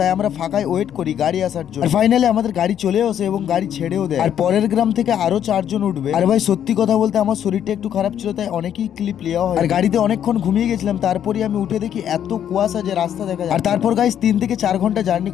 আমরা ফাঁকায় ওয়েট করি গাড়ি আসার জন্য। আর ফাইনালি আমাদের গাড়ি চলেও আসে এবং গাড়ি ছেড়েও দেয়। আর পরের গ্রাম থেকে আরো 4 জন উঠবে। আর ভাই সত্যি কথা বলতে আমার শরীরটা একটু খারাপ ছিল, তাই অনেকই ক্লিপ নেওয়া হয়। আর গাড়িতে অনেকক্ষণ ঘুমিয়ে গেছিলাম, তারপরে আমি উঠে দেখি এত কুয়াশা যে রাস্তা দেখা যায়। আর তারপর গাইস 3 থেকে 4 ঘন্টা জার্নি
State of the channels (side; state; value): right; quieter; 9.8 dB